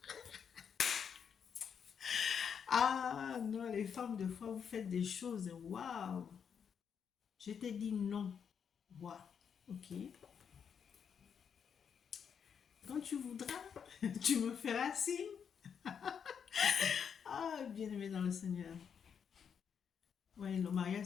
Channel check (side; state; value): right; quieter; 7.3 dB